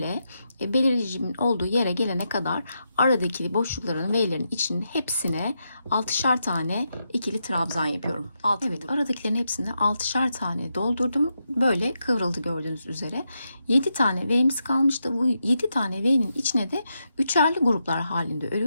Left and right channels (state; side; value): inverted; both; correlation -0.84